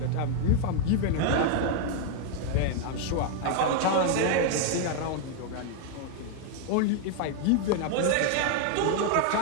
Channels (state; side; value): different; both; correlation 0.00